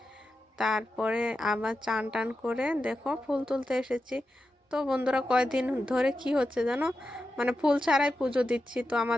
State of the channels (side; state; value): both; normal; correlation 0.90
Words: তারপরে আবার চান টান করে দেখো ফুল তুলতে এসেছি। তো বন্ধুরা কয়দিন ধরে কি হচ্ছে জানো, মানে ফুল ছাড়াই পুজো দিচ্ছি। তো